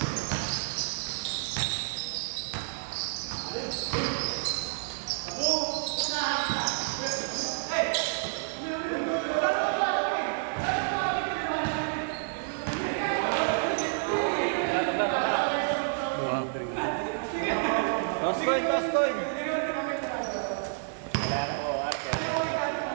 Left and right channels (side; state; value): left; silent; 58 dB below the other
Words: Toss coin, toss coin!